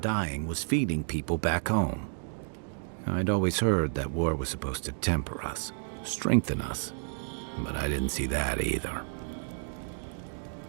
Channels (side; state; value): left; silent; digital silence